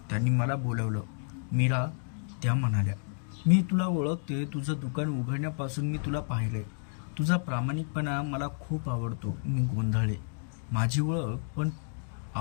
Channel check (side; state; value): right; silent; digital silence